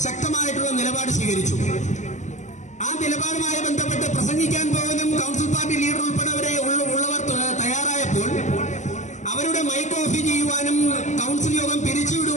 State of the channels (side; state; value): right; late; 0.35 ms